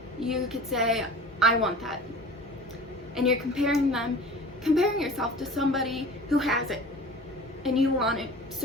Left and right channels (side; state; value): both; normal; correlation 0.39